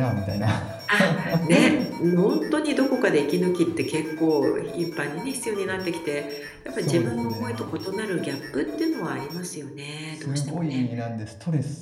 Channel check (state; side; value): identical; both; correlation 1.00